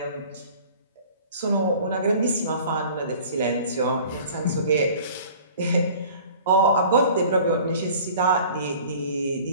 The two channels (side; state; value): both; inverted; correlation -0.47